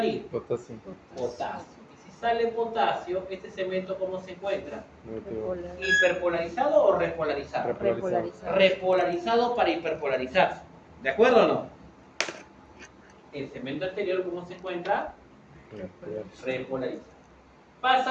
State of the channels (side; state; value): both; identical; correlation 1.00